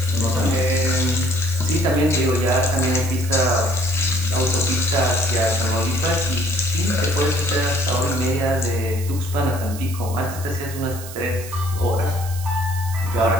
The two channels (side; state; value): right; noise; hiss, 13 dB below the sound